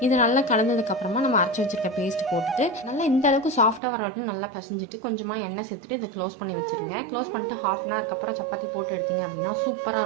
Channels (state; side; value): drops out; left; at 3.8 s